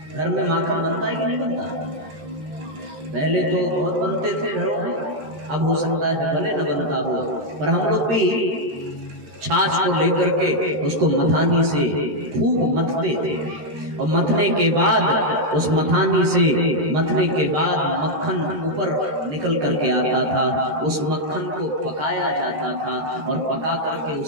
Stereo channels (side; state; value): left; late; 13 ms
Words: घर में माखन बनता है कि नहीं बनता? पहले तो बहुत बनते थे घरों में, अब हो सकता है भले न बनता हो, पर हम लोग भी छाछ को लेकर के उसको मथानी से खूब मथते थे। और मथने के बाद उस मथानी से मथने के बाद मक्खन ऊपर निकल करके आता था। उस मक्खन को पकाया जाता था और पका करके